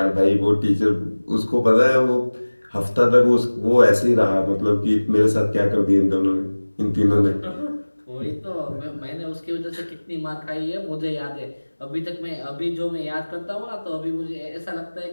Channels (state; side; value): inverted; both; correlation -1.00